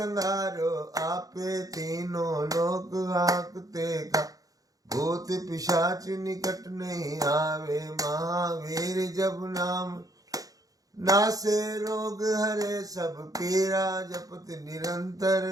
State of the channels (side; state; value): left; late; 0.17 ms